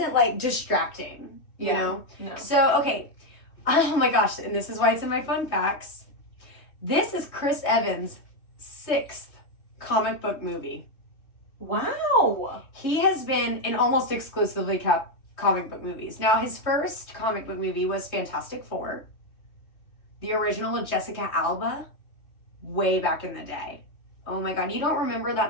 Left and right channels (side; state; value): right; late; 3.2 ms